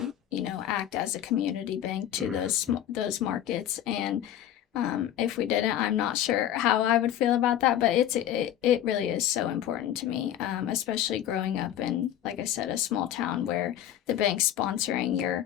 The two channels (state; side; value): quieter; right; 11.2 dB